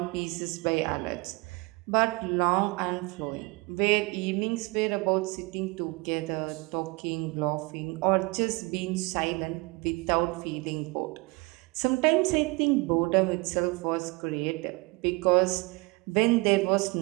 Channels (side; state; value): left; quieter; 25.9 dB